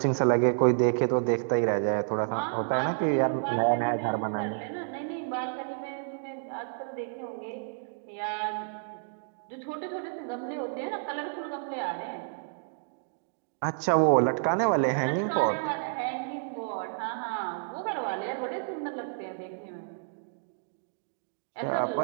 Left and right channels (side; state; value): left; silent; digital silence